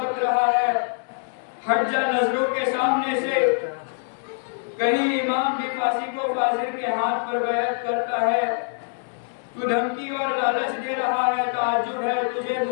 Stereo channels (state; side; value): silent; right; 62 dB below the other